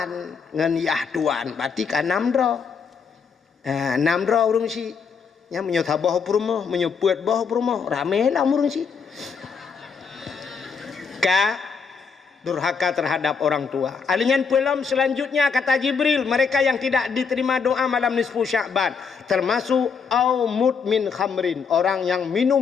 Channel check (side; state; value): right; quieter; 5.8 dB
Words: ngan yah tuan. Berarti kan namdro. Namdro urungsi. Nya menyota boh purmo, menyebut boh purmo, ramelah murungsi. Durhaka terhadap orang tua. Alingan pelam selanjutnya kata Jibril, mereka yang tidak diterima doa malam nisfu Sya'ban, termasuk au mudmin khamrin, orang yang minum